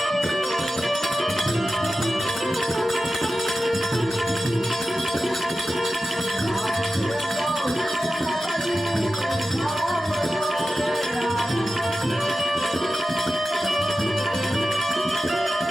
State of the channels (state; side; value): normal; both; correlation 0.93